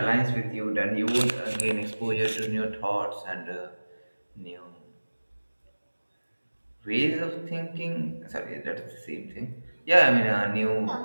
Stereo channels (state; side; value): inverted; both; correlation -1.00